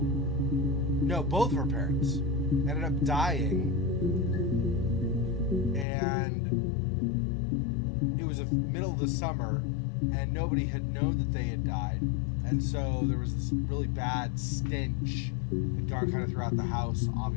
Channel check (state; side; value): drops out; right; at 5.9 s